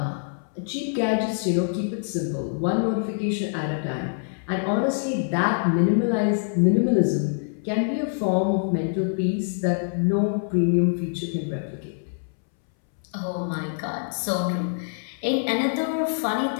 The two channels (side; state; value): right; silent; 61 dB below the other